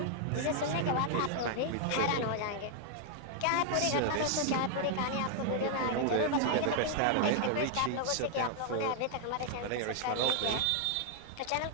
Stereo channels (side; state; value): both; different; correlation 0.00